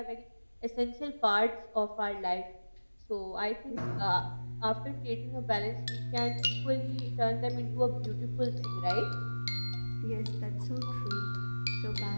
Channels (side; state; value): both; inverted; correlation -1.00